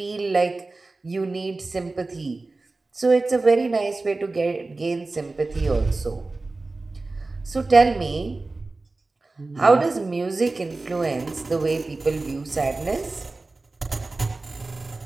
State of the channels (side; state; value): left; quieter; 3.4 dB